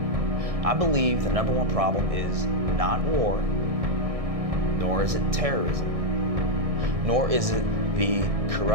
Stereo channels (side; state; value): left; late; 1.6 ms